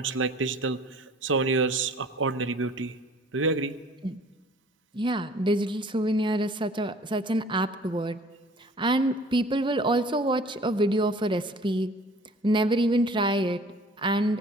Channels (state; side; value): normal; both; correlation 0.50